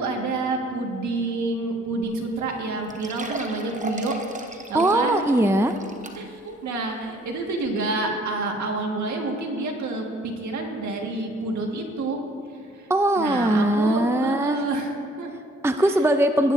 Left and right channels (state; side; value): normal; both; correlation 0.58